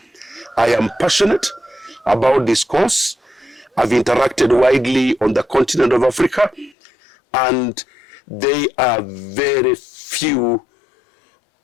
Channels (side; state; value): right; drops out; at 6.8 s